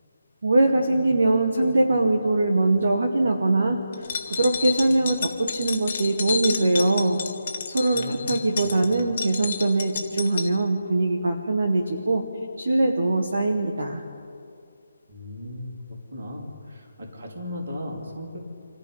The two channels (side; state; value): both; inverted; correlation -0.89